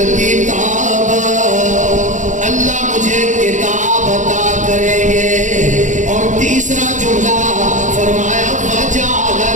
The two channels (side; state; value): left; late; 0.36 ms